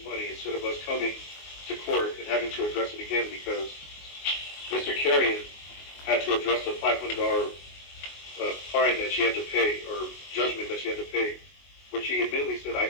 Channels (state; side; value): late; right; 22 ms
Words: money instead of us coming to court and having to address it again, because Mr. Carrion had to address a $500 fine that she had to pay, or judgment that she had to pay, which she admittedly said, I